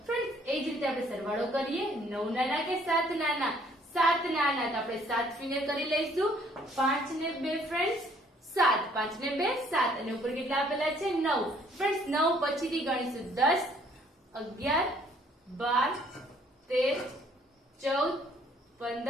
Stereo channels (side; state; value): both; normal; correlation 0.61